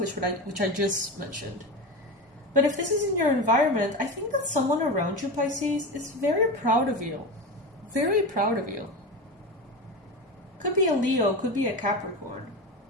which I just mentioned. But if this is in your environment, I think that someone around you, Pisces, is very proud of you. Very proud of you. Could be a Leo, could be a Capricorn.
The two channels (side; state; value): both; normal; correlation 0.23